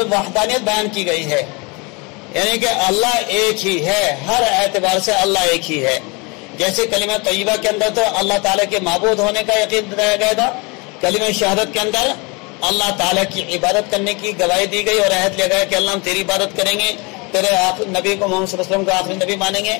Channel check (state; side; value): quieter; right; 28.7 dB